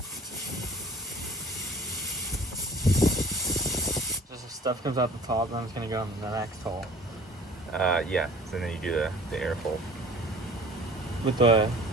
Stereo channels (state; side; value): normal; both; correlation 0.49